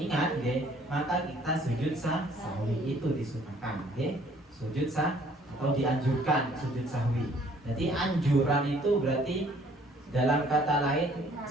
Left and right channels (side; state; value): both; normal; correlation 0.59